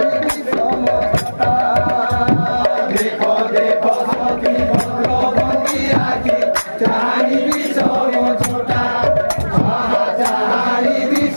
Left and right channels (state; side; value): inverted; both; correlation -1.00